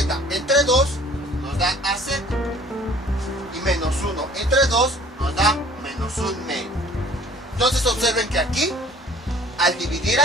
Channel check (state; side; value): normal; both; correlation 0.52